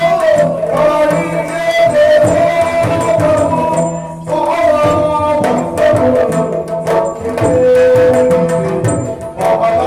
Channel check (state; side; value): identical; both; correlation 1.00